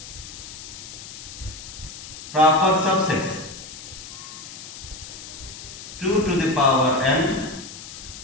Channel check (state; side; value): noise; left; hiss, 13 dB below the sound